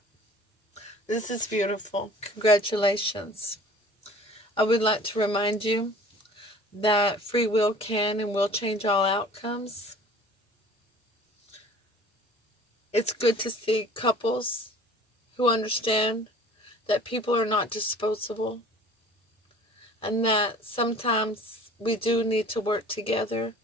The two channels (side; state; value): both; normal; correlation 0.47